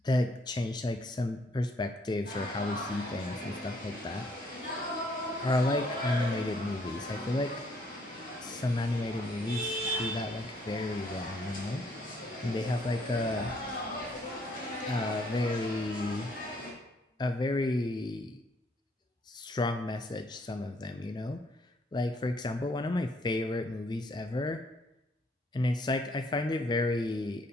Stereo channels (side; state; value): both; normal; correlation 0.66